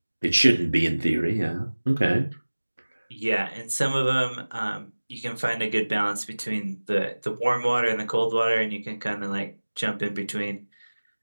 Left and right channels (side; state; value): both; inverted; correlation -1.00